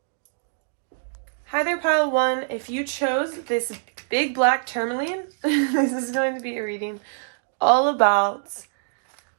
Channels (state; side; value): silent; left; digital silence